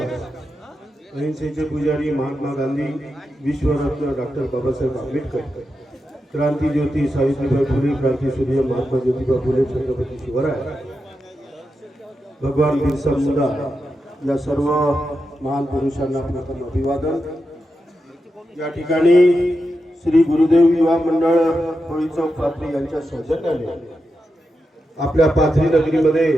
अहिंसेचे पुजारी महात्मा गांधी, विश्वरत्न डॉक्टर बाबासाहेब आंबेडकर, क्रांती ज्योती सावित्रीबाई फुले, क्रांती सूर्य महात्मा ज्योतिबा फुले, छत्रपती शिवराय, भगवान बिरसा मुंडा या सर्व महान पुरुषांना प्रथम अभिवादन। या ठिकाणी श्री गुरुदेव युवा मंडळ होळी चौक पाथरी यांच्या सौजन्याने आपल्या पाथरी नगरीमध्ये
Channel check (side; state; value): both; normal; correlation 0.88